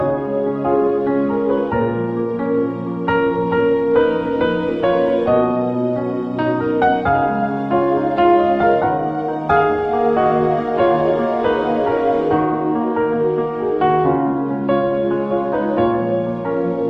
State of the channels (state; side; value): identical; both; correlation 1.00